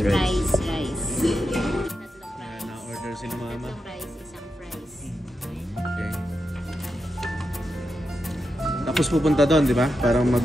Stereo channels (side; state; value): both; normal; correlation 0.87